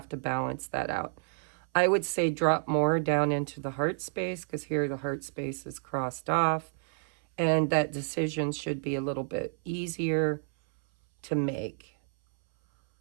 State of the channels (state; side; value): silent; left; 58 dB below the other